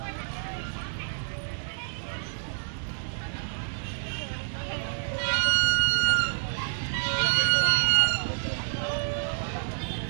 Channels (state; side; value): silent; left; digital silence